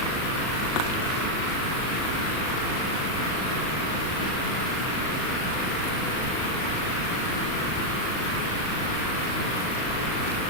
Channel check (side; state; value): right; late; 38 ms